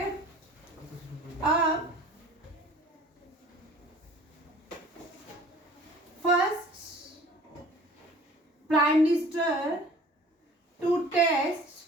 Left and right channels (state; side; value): normal; both; correlation 0.48